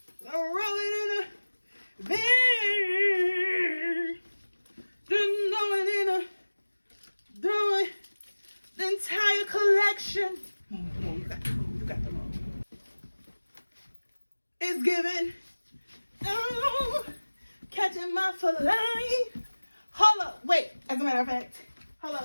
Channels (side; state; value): both; inverted; correlation -1.00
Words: roll it in the bag. Just throw it in the entire collection. Come on, you got the wrong. It's given. Oh, catching my fillet. Hold up. Wait. As a matter of fact. Hold